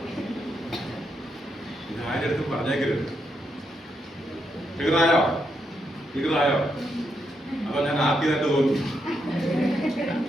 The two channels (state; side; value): normal; both; correlation 0.81